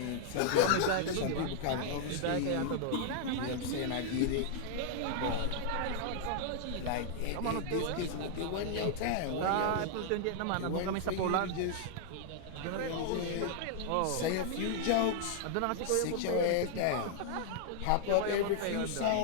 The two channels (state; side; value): different; both; correlation -0.01